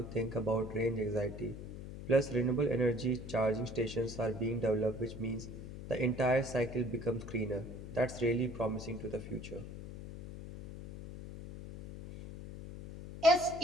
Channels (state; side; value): noise; left; hum, 11 dB below the sound